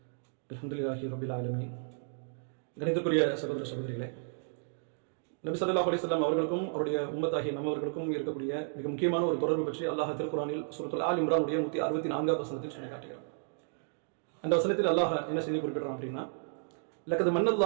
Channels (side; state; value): left; silent; digital silence